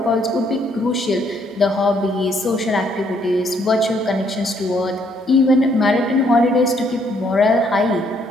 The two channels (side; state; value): both; normal; correlation 0.69